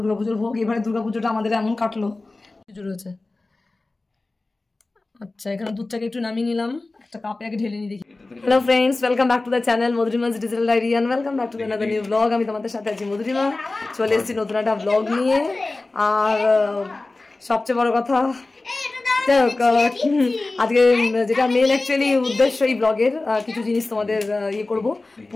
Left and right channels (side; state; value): right; quieter; 3.2 dB